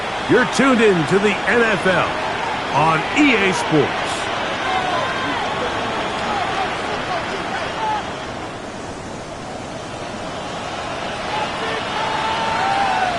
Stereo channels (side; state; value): both; identical; correlation 1.00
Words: You're tuned in to the NFL on EA Sports.